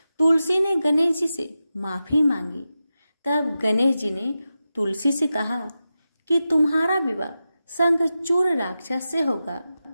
तुलसी ने गणेश जी से माफी मांगी। तब गणेश जी ने तुलसी से कहा कि तुम्हारा विवाह शंखचूड़ राक्षस से होगा,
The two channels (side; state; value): both; inverted; correlation -0.92